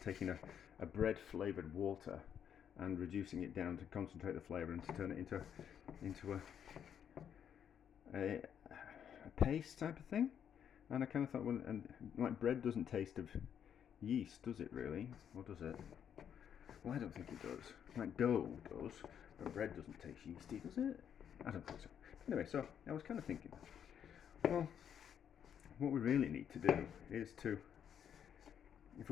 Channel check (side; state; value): right; quieter; 8.7 dB